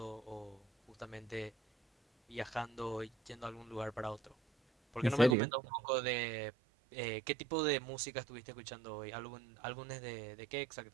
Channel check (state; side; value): drops out; left; at 5.4 s